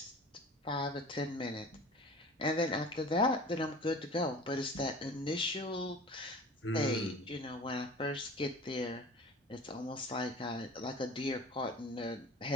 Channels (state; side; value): normal; both; correlation 0.41